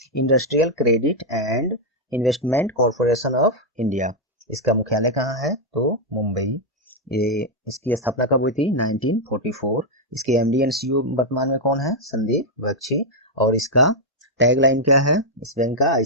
industrial credit and investment corporation of India. इसका मुख्यालय कहाँ है, तो मुंबई। ये इसकी स्थापना कब हुई थी, 1944। इसके एमडी एंड सीईओ वर्तमान में कौन है, संदीप बख्शी। और इसका टैगलाइन क्या है इस बैंक का,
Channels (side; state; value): both; normal; correlation -0.02